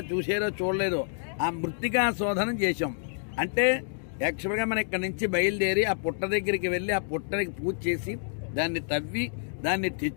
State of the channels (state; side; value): silent; right; digital silence